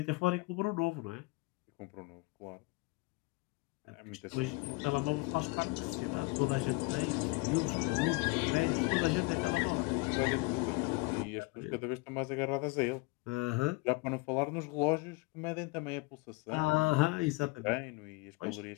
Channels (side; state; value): right; quieter; 26.1 dB